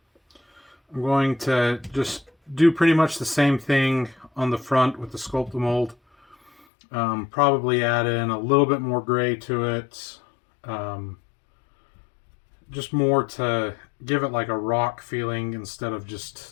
I'm going to just do pretty much the same thing on the front with the sculpt to mold. Probably add in a little bit more gray to it. Just more to give it like a rock feeling instead of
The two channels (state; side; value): drops out; right; at 6.7 s